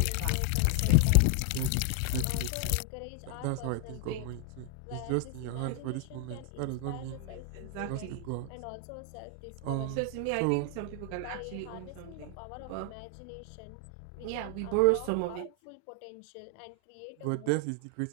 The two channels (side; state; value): both; different; correlation 0.00